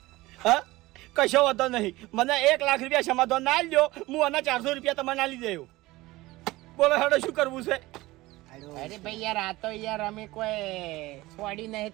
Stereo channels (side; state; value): left; quieter; 19.3 dB